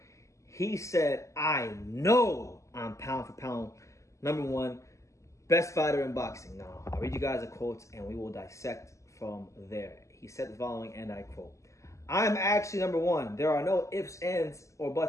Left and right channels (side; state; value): right; late; 0.15 ms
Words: He said, I know I'm pound for pound number one, best fighter in boxing. Now, I'll read you guys the quotes and we will dissect from there. He said the following, and I quote, I'm actually number one. There are no ifs, ands, or